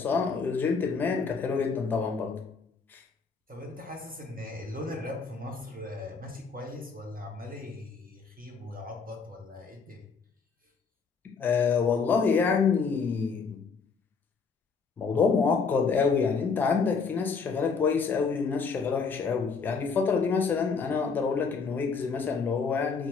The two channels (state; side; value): quieter; right; 5.2 dB